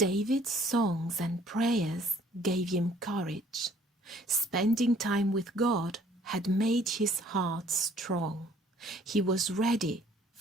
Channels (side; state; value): both; normal; correlation 0.58